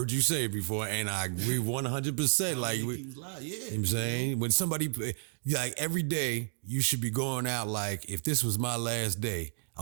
you say it before, and I agree 100%. How many people's lives? Yeah. You know what I'm saying? When somebody, every day, you should be going out like, if this was my last day,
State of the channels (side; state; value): left; silent; digital silence